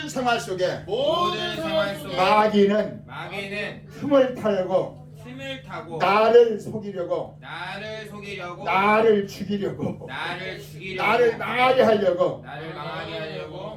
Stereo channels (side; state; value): both; identical; correlation 1.00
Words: 생활 속에 마귀는 틈을 타려고 틈을 타고 나를 속이려고 나를 죽이려고 나를 망하게 하려고